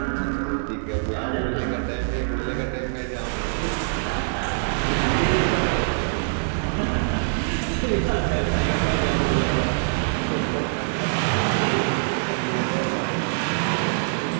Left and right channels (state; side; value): silent; left; digital silence